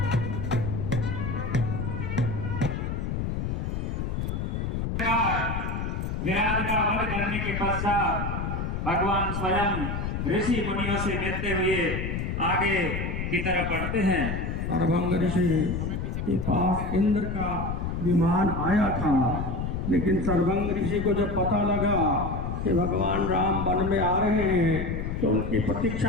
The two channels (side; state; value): left; noise; rumble, 2 dB below the sound